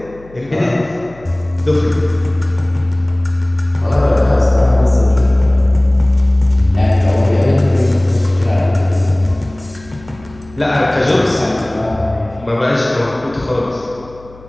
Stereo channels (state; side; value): noise; left; hum, 23 dB below the sound